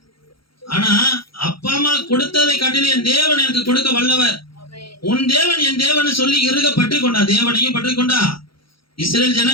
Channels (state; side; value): late; right; 0.74 ms